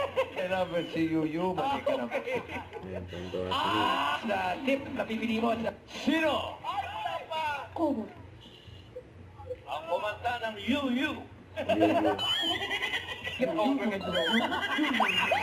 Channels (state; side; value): identical; both; correlation 1.00